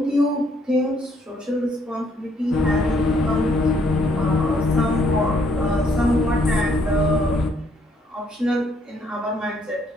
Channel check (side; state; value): both; normal; correlation 0.69